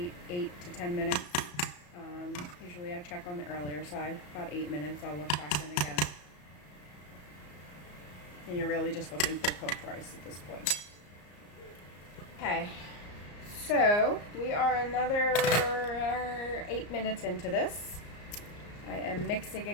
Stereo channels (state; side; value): late; right; 34 ms